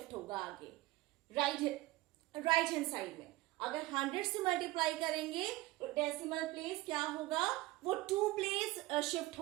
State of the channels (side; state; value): left; quieter; 18.6 dB